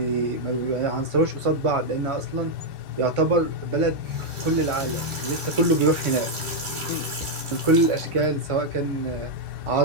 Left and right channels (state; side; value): late; left; 1.6 ms